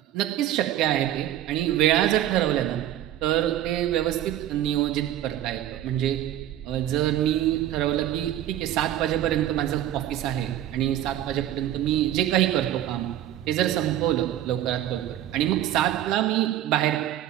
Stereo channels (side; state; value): left; quieter; 12.4 dB